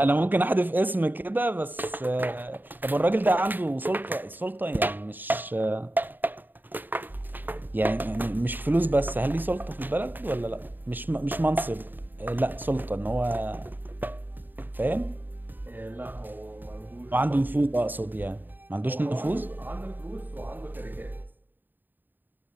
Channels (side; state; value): left; late; 0.091 ms